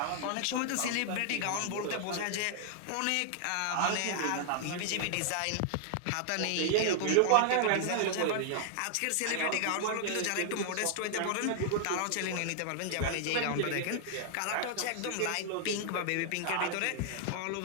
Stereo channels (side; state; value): both; different; correlation 0.00